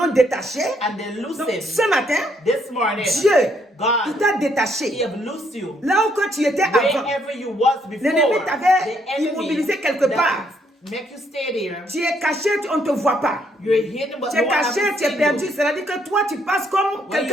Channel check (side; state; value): both; normal; correlation 0.71